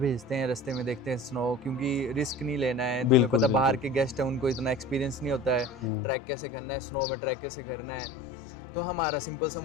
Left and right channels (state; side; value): drops out; right; at 5.9 s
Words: हैं, रास्ते में देखते हैं स्नो, क्योंकि रिस्क नहीं लेना है। तुम्हें बिल्कुल पता बाहर बिल्कुल। के गेस्ट हैं, उनको इतना एक्सपीरियंस नहीं होता है हम्म। ट्रैक कैसे करना है, स्नो में ट्रैक कैसे करना है। तो हमारा सिंपल सा